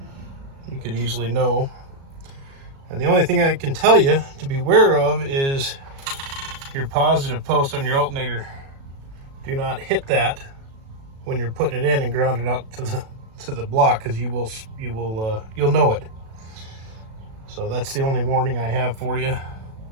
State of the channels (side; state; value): left; late; 36 ms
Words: you could easily know. And the only thing I can tell you to be aware of is your positive post on your alternator. Do not hit that when you're putting it in and ground it out the block, because you'll know it. So that's the only warning I have for you.